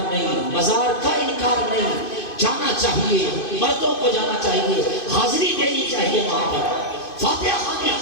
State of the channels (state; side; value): late; right; 2.5 ms